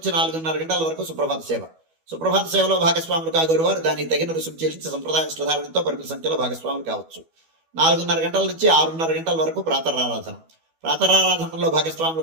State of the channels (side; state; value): left; late; 12 ms